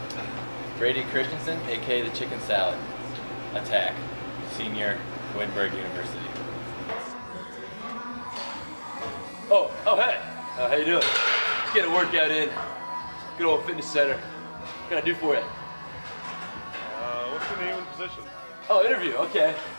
Brady Christensen, aka the Chicken Salad, attack, senior, Wittenberg University. Oh, hey, how you doing? Let's get a workout in. Good old fitness center. What can I do for you? What's your name and position? Oh, interview, okay.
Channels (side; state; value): both; inverted; correlation -1.00